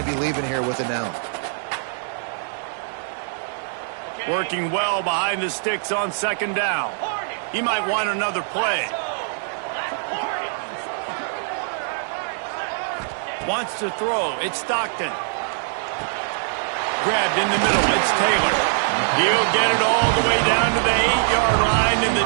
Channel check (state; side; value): silent; left; digital silence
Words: to be leaving here with an L. Working well behind the sticks on second down. He might want another play. Wants to throw. It's Stockton. Grabbed in the middle. It's Taylor. He'll get it all the way down to the 8-yard line, and the